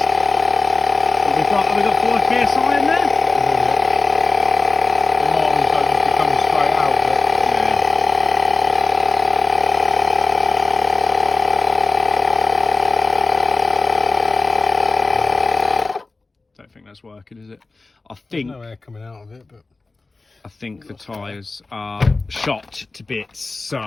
Have we got 4 PSI in there? The Martins don't just be coming straight out, but Don't think that's working, is it? I think there's no air coming out of it, but I think the tyres are shot to bits.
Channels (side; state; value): right; quieter; 3.5 dB